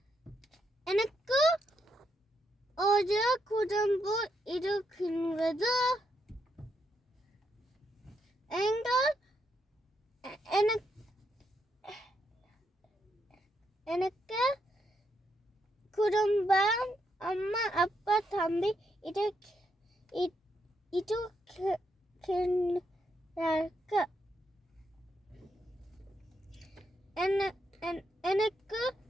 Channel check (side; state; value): both; normal; correlation 0.79